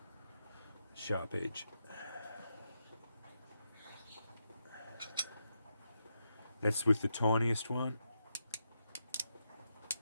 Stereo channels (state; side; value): inverted; both; correlation -0.84